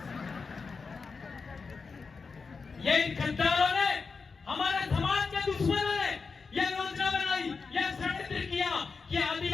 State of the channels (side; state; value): right; quieter; 4.8 dB